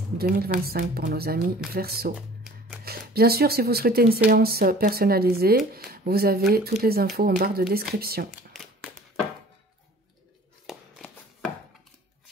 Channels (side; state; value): both; normal; correlation 0.48